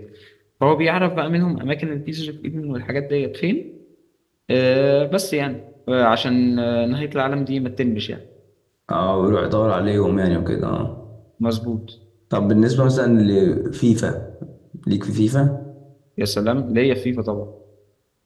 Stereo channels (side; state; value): both; identical; correlation 1.00